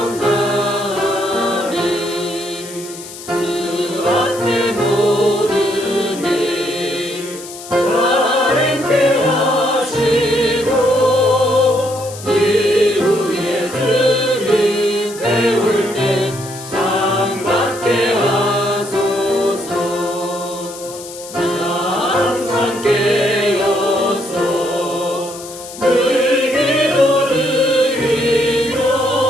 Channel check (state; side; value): noise; left; hiss, 14 dB below the sound